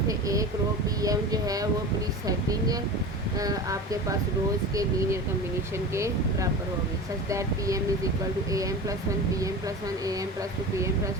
से एक रो Pm जो है वो प्री सेटिंग आपके पास रोज़ के लीनियर कम्बिनेशन के बराबर होगी, such that Pm is equal to Am plus one Pm plus one Am plus two Pm plus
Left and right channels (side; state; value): both; normal; correlation 0.30